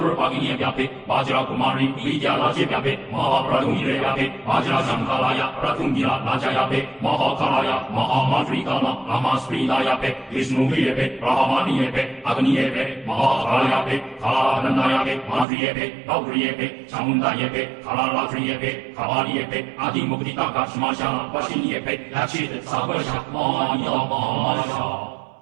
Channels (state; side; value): drops out; left; at 15.5 s